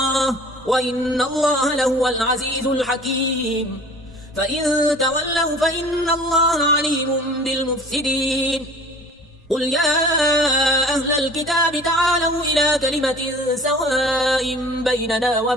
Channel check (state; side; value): normal; both; correlation 0.46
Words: وإن الله لهو العزيز الحكيم فإن تولوا فإن الله عليم بالمفسدين قل يا أهل الكتاب تعالوا إلى كلمة سواء